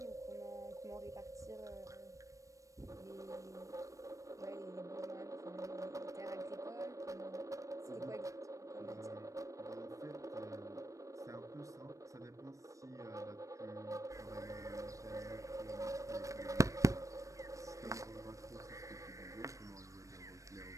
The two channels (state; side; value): late; left; 0.16 ms